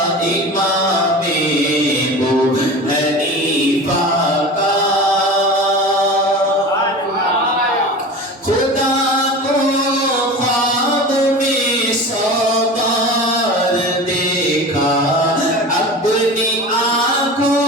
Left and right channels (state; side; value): normal; both; correlation 0.33